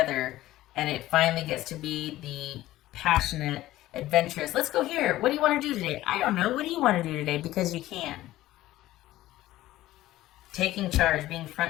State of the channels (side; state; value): right; quieter; 15.6 dB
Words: and it finally gets to be the passionate, adventurous. Let's go here. What do you want to do today? I don't know. What do you want to do today? Because you can. Taking charge, being